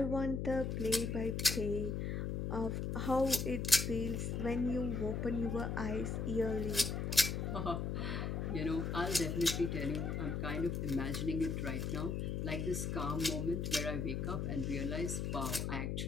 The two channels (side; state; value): left; noise; hum, 1 dB below the sound